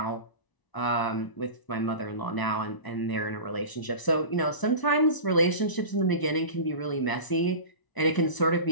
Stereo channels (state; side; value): late; right; 1.0 ms